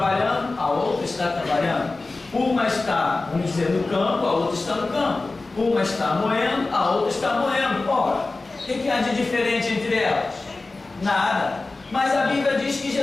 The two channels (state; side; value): quieter; right; 3.4 dB